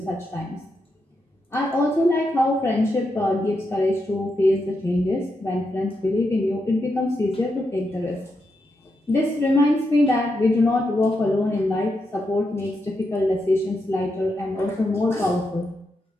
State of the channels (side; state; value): both; normal; correlation 0.84